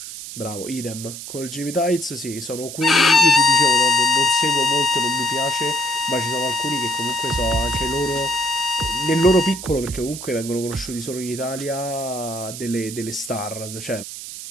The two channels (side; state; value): right; noise; hiss, 10 dB below the sound